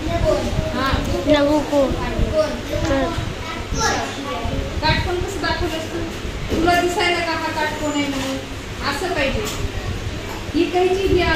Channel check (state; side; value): identical; both; correlation 1.00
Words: हां लघु कोण काटकोन कसं दाखवलंस तू? तुला दिसायला का हा काटकोन आहे म्हणून? असं पाहिजे. ही काहीची ही